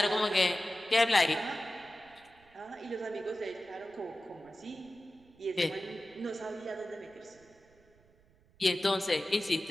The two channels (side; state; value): right; noise; rumble, 30 dB below the sound